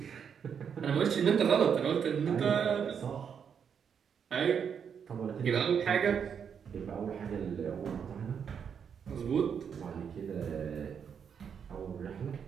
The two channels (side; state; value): left; quieter; 7.3 dB